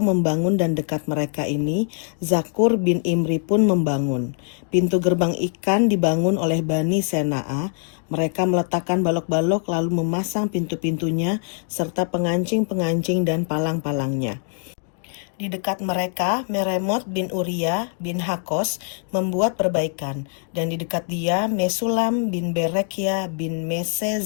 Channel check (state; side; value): silent; right; 64 dB below the other